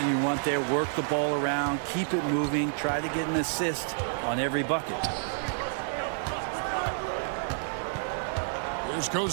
you want there. Work the ball around, keep it moving, try to get an assist on every bucket. Here's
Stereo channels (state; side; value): silent; left; digital silence